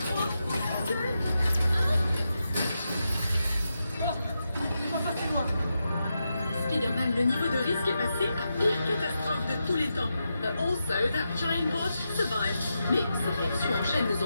2, 1. Spider-Man, le niveau de risque est passé à pire catastrophe de tous les temps. Also, that giant bot survived. Mais ces réactions en chaîne nous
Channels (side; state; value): both; inverted; correlation -0.87